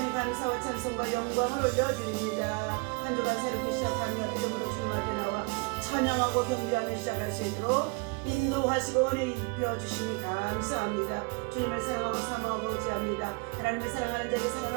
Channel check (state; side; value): quieter; left; 31.1 dB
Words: 감사와 찬송과 영광을 올려드립니다. 한 주간 새롭게 시작하며 이름으로 주님 앞에 나와 찬양하고 경배하며 시작할 수 있도록 인도하시고 은혜 입혀주시니 감사합니다. 주님을 사랑하고 사모하고 의지합니다. 하나님을 사랑하는 자에게